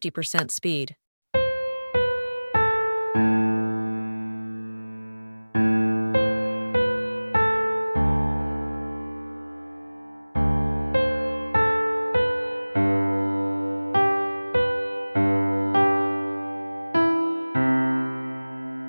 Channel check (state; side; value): inverted; both; correlation -1.00